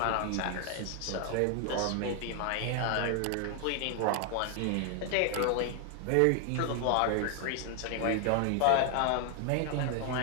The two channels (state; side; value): different; both; correlation 0.00